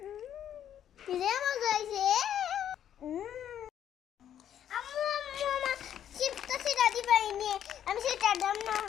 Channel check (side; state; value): right; quieter; 10.1 dB